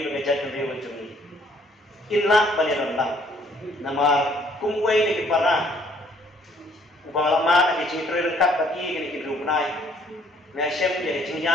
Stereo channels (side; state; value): both; normal; correlation 0.62